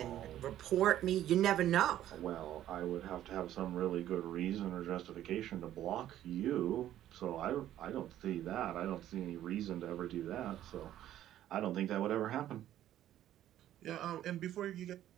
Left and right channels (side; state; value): left; quieter; 12.4 dB